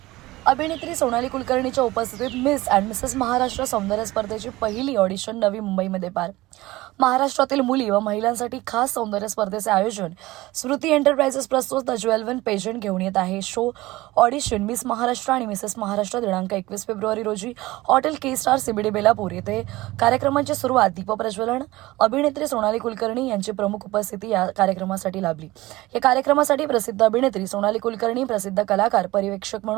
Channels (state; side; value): quieter; left; 19.0 dB